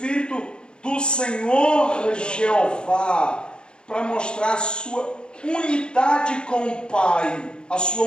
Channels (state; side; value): late; right; 0.051 ms